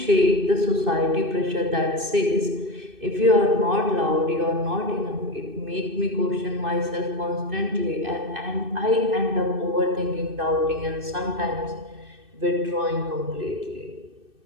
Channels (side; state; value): left; late; 2.6 ms